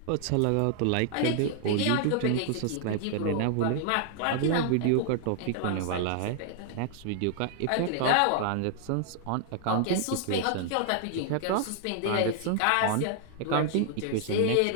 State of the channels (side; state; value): both; different; correlation 0.00